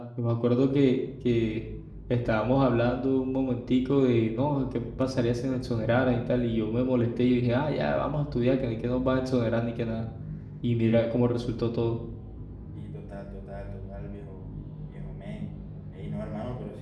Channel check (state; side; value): identical; both; correlation 1.00